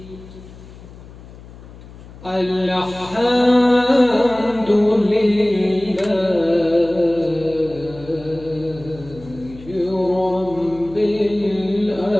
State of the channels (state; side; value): noise; left; hum, 18 dB below the sound